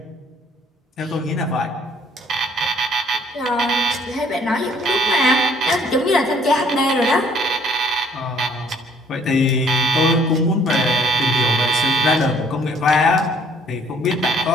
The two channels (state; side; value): normal; both; correlation 0.61